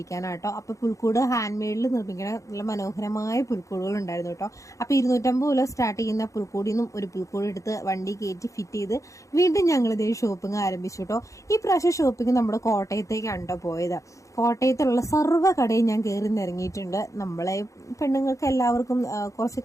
അപ്പൊ പുൽക്കൂട് ഹാൻഡ് മെയ്ഡിൽ നിർമ്മിക്കുന്ന നല്ല മനോഹരമായ പുൽക്കൂടുകൾ ഉണ്ടായിരുന്നു കേട്ടോ. അപ്പൊ 250 രൂപ സ്റ്റാർട്ട് ചെയ്യുന്ന പുൽക്കൂടിൽ നിന്നും ഒരു പുൽക്കൂട് എടുത്ത് വണ്ടി കയറ്റി ഫിറ്റ് ചെയ്ത് വീണ്ടും ഞങ്ങൾ ഇതേ ഷോപ്പിംഗ് ആരംഭിച്ചു കേട്ടോ. ഈ പ്രാവശ്യം ഷോപ്പിംഗ് നമ്മുടെ കോട്ടയത്തേക്കാണ് പോയത്. കോട്ടയത്തുള്ള സർവ്വ കടയും ഞാൻ കയറി നിറങ്ങിയിട്ടുണ്ട്. നമ്മളെ പെണ്ണുങ്ങൾക്ക് എല്ലാവർക്കും കുറച്ച്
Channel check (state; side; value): late; right; 0.15 ms